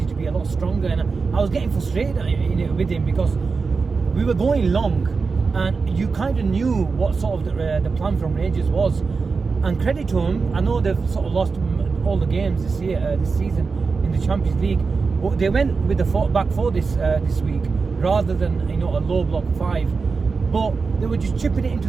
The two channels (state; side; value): quieter; left; 4.7 dB